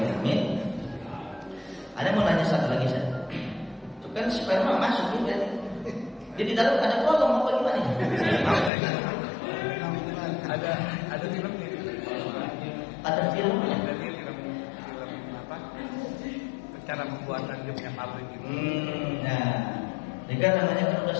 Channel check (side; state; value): right; drops out; at 8.7 s